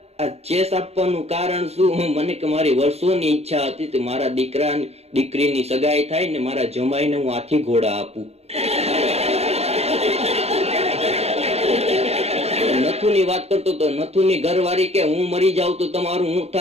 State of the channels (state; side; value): late; left; 0.30 ms